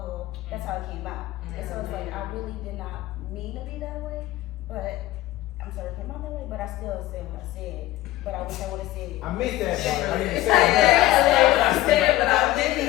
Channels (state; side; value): quieter; right; 16.1 dB